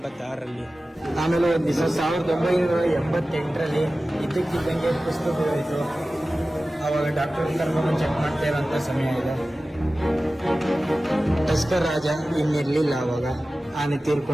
ಆಮೇಲೆ ಒಂದು ದಿವಸ 1988ರಲ್ಲಿ ಇದ್ದಕ್ಕಿದ್ದಂಗೆ ಪುಸ್ತಕ ಹೋಯಿತು. ಅವಾಗ ಡಾಕ್ಟರ್ ಕರ್ಕೊಂಡು ಚೆಕ್ ಮಾಡ್ತಾ ಇರೋಂಥ ಸಮಯ ಇದೆ. ಟಸ್ಕರ್ ರಾಜ ಇನ್ನಿರ್ಲಿಲ್ಲ ಅವಾಗ. ಆನೆ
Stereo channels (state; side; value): normal; both; correlation 0.96